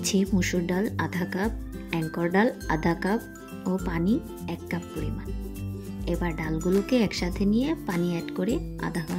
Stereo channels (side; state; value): both; identical; correlation 1.00